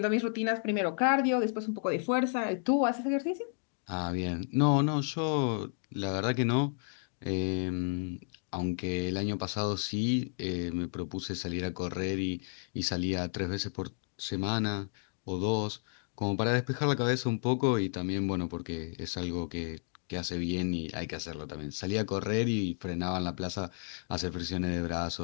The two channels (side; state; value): right; silent; 56 dB below the other